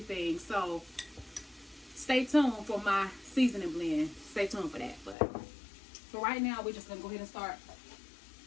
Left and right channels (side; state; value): right; drops out; at 5.2 s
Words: So stay tuned for my seasoning blend. Stay tuned for that. But for right now, we're just going to go ahead and start